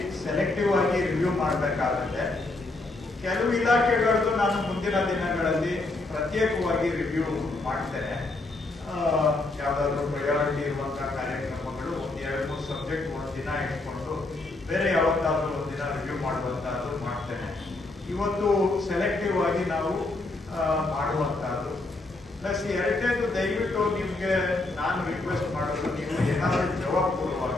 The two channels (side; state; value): right; quieter; 3.1 dB